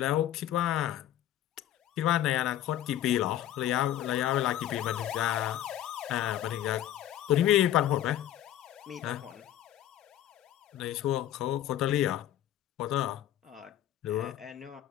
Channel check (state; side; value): quieter; right; 12.2 dB